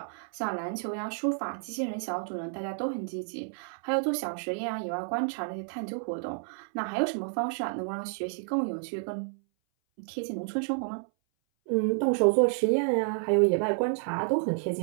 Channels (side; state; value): left; silent; 58 dB below the other